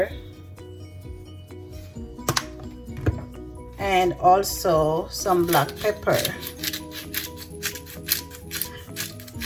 and also some black pepper.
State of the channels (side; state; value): both; identical; correlation 1.00